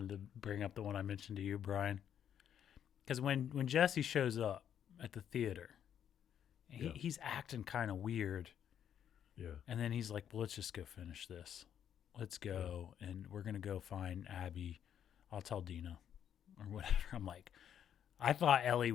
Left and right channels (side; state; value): right; quieter; 9.3 dB